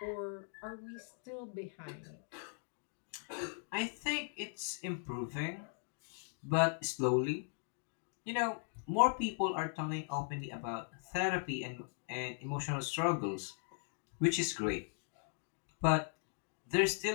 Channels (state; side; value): silent; right; digital silence